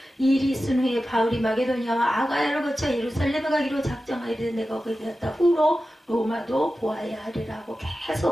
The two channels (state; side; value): normal; both; correlation 0.93